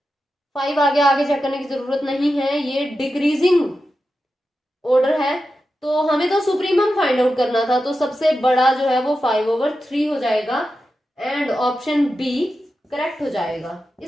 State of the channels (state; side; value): normal; both; correlation 0.90